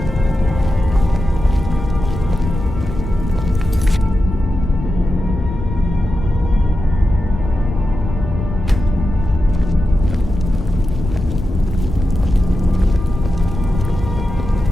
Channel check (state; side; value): noise; left; rumble, 6 dB below the sound